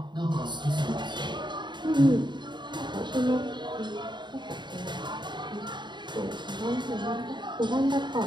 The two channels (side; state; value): left; late; 0.22 ms